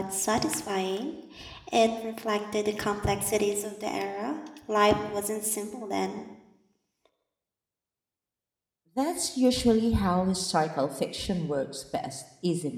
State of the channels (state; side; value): identical; both; correlation 1.00